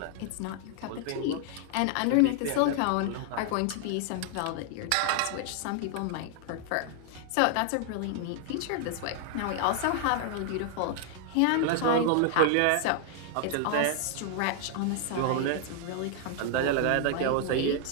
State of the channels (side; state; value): both; different; correlation 0.00